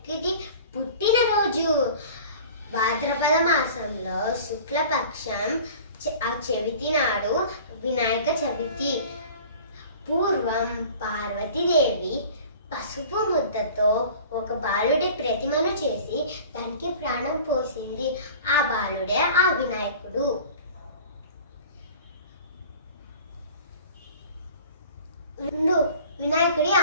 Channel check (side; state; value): both; inverted; correlation -0.43